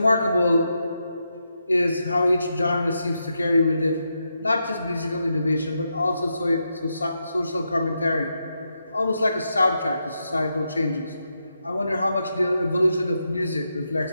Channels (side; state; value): both; inverted; correlation -0.84